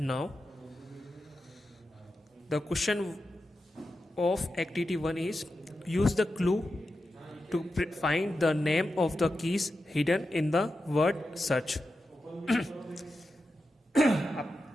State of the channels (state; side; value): normal; both; correlation 0.90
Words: The question of activity 1 is use the clue to find the name of the keys hidden in the word search.